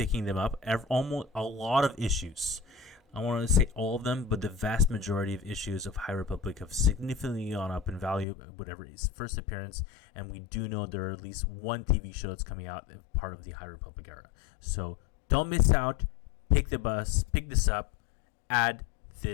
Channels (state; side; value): drops out; right; at 8.2 s